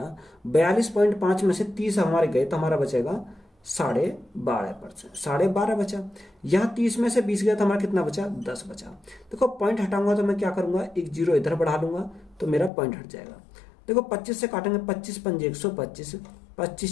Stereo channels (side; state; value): right; drops out; at 12.7 s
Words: 42.5 में से 30 हमारे गए तो हमारा बचेगा 12.5%, 12.5 बचा। यहाँ 30 में से 20 गया तो हमारा कितना बचा, 10 बचा। देखो पॉइंट हटाऊंगा तो मैं क्या करूंगा, एक जीरो इधर बढ़ा लूंगा तो मेरा पॉइंट हट जाएगा। देखो 25 से काटेंगे, 25 पंजे 125,